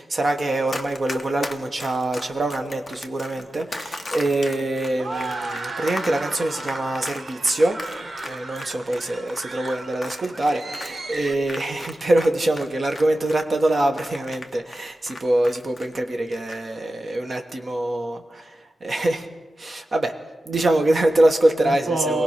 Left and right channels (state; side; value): normal; both; correlation 0.93